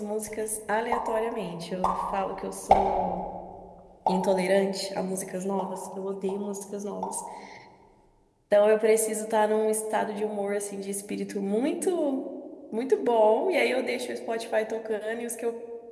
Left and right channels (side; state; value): both; identical; correlation 1.00